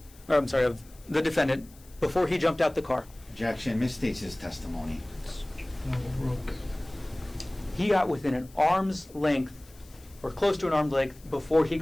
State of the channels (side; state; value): left; noise; hiss, 25 dB below the sound